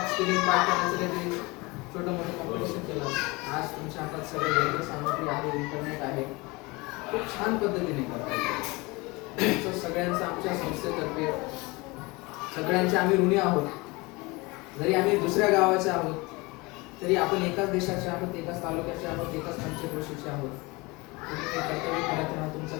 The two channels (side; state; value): right; quieter; 24.5 dB